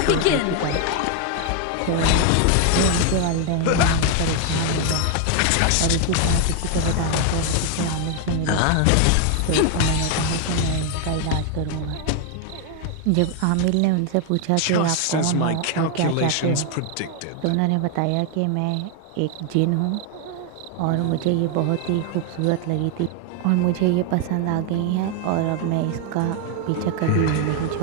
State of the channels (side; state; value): both; different; correlation 0.01